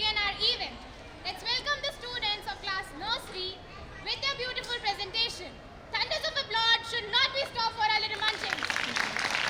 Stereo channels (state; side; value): identical; both; correlation 1.00